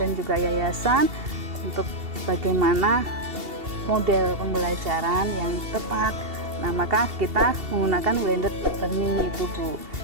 juga yayasan untuk bagaimana model pembelajaran yang tepat. Nah, maka kita menggunakan blended learning itu Bu,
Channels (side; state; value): left; late; 2.7 ms